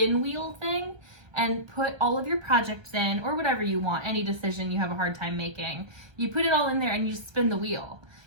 wheel thing, and put all of your projects in, or whatever you want, any decision you have a hard time making. You put it all in there and you spin the wheel.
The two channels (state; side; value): late; left; 1.3 ms